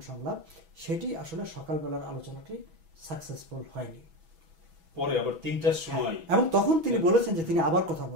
সংলাপ, সেটি আসলে সকালবেলার আলোচনাটি সাকসেসফুল হয়নি। পরে আবার 3টার সময়, এবং তখন তিনি বলেছেন যে তিনি আবার কথা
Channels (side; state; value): left; late; 6.1 ms